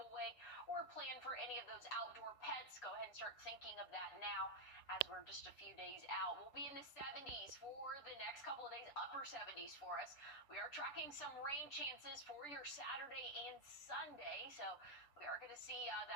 a way or a plan for any of those outdoor pets. Go ahead and start thinking of that now as we're just a few days out. We'll be in the 70s for the next couple of days, upper 70s for us. We are tracking some rain chances for your Saturday and Sunday, so we are going to see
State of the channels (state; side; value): late; right; 6.9 ms